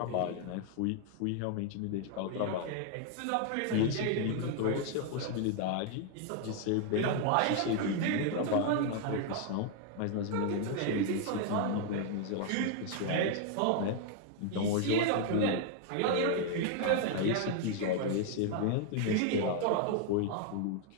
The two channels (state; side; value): different; both; correlation 0.00